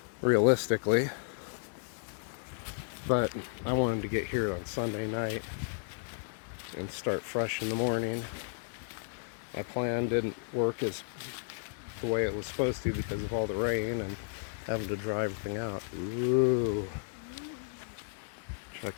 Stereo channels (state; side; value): silent; right; digital silence